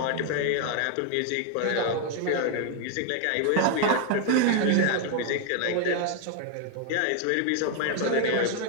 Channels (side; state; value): both; different; correlation 0.01